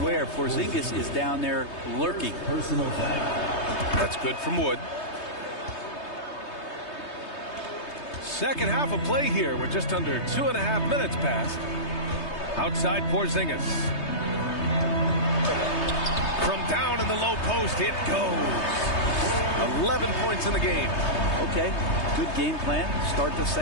Porzingis is down there lurking. Personal foul. That's good from Wood. Second half of play here with just under 2.5 minutes passed. Outside Porzingis. From down in the low post, it goes. 11 points in the game. Okay, good game plan. Start the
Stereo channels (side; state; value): right; late; 3.2 ms